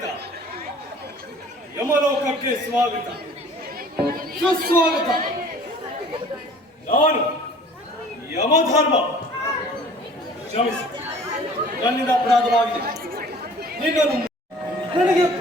ಯಮಲೋಕಕ್ಕೆ ಸ್ವಾಗತ ಸುಸ್ವಾಗತ. ನಾನು ಯಮಧರ್ಮ, ಕ್ಷಮಿಸಿ, ನನ್ನಿಂದ ಅಪರಾಧವಾಗಿದೆ. ನಿನ್ನನ್ನು ನನಗೆ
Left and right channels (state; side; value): normal; both; correlation 0.49